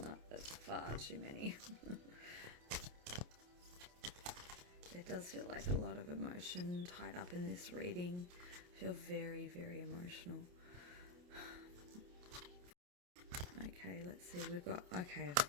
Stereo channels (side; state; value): left; late; 28 ms